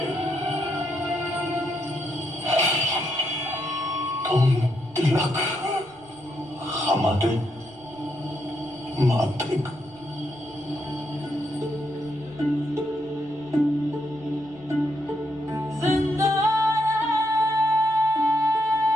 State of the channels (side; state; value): right; noise; rumble, 27 dB below the sound